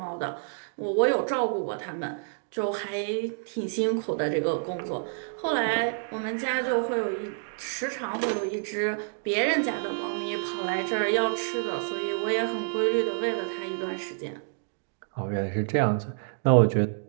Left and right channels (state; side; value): silent; left; digital silence